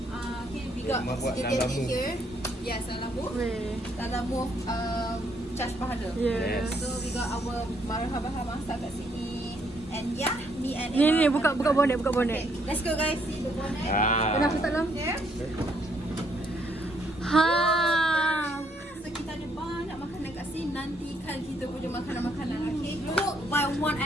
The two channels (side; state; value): both; normal; correlation 0.70